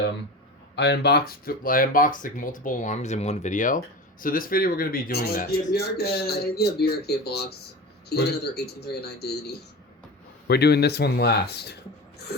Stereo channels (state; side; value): normal; both; correlation 0.30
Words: unboxed like multiple alarms in one video. So this video we're gonna be doing that. Yeah, BRK box. He got another 1839 Disney. We're doing this one last.